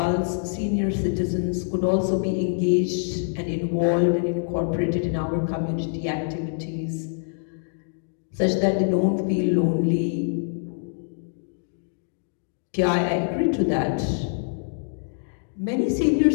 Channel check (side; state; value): right; silent; digital silence